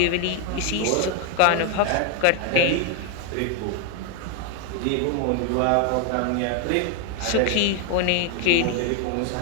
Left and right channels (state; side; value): different; both; correlation 0.01